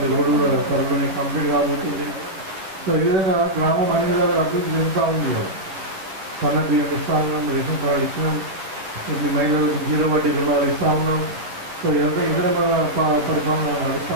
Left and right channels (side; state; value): left; late; 11 ms